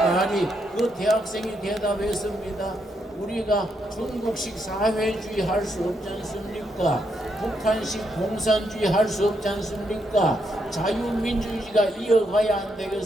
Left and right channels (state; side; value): normal; both; correlation 0.78